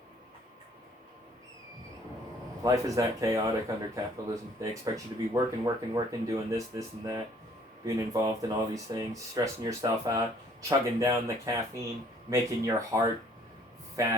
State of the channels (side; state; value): both; normal; correlation 0.59